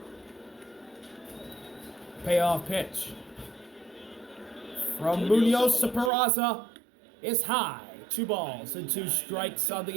Payoff pitch from Muñoz to Peraza is high. 2 balls and 2 strikes on the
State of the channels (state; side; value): drops out; left; at 6.1 s